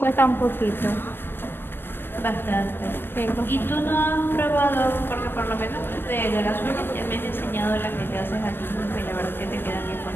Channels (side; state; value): right; late; 0.099 ms